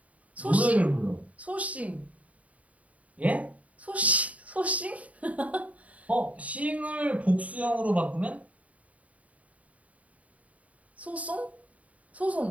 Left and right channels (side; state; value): left; late; 0.069 ms